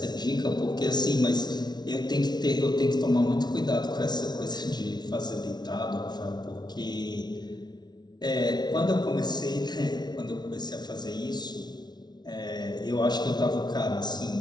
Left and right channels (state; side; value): late; right; 0.20 ms